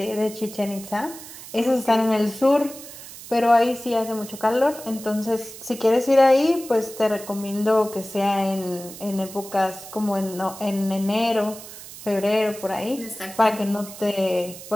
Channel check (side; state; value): right; noise; hiss, 15 dB below the sound